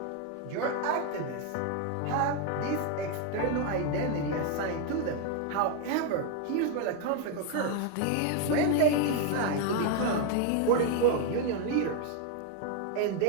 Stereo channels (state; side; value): different; both; correlation 0.01